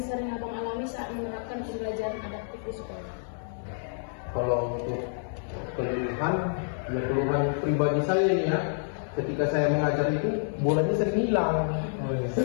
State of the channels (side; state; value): right; silent; digital silence